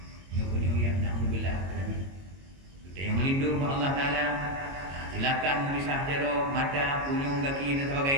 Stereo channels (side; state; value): left; late; 22 ms